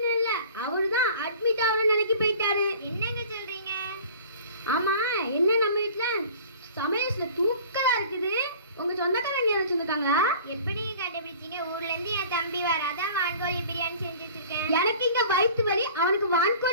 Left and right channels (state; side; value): inverted; both; correlation -0.45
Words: இல்ல, அவருதான் அட்மிட் ஆகணும் நினைக்கி போயிட்டாரு. என்னங்க சொல்றீங்க? ஆமா, என்ன நம்ம வீட்டுல சமையல்ல தூக்கலா இருக்குது. உங்க சொந்தக்காரங்க யாரும் சொந்தக்காங்களா? எப்படி கண்டுபிடிச்சீங்க? ஊர்ல இருந்து என் தம்பி வர, அதான் வான்கோழி பிரியாணி செஞ்சு வச்சிருக்கேன். எனக்கு இங்க வயிற்று வலி, அவனுக்கு